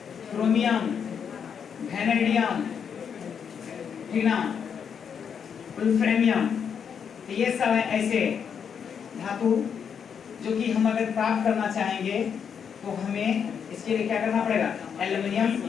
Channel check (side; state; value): right; quieter; 7.3 dB